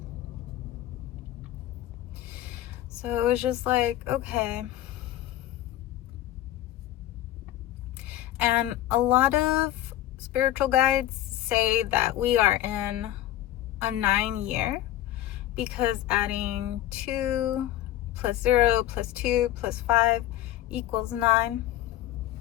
So it was just like, okay. And a lot of spiritual guides say that we are in a 9 year, because adding 2 plus 0 plus 2 plus 5 equals 9.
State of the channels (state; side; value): quieter; right; 13.6 dB